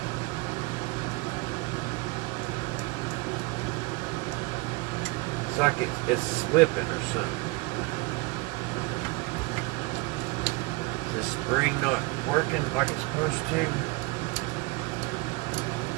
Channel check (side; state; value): left; quieter; 24.1 dB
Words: It's like it's slipping or something. Is the spring not working like it's supposed to?